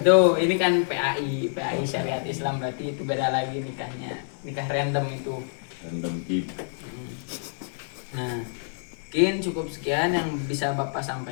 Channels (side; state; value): right; silent; digital silence